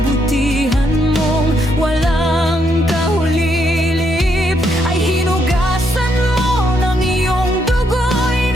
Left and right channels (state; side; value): normal; both; correlation 0.76